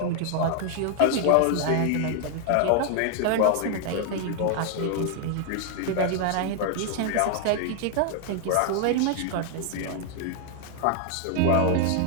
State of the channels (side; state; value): both; different; correlation 0.00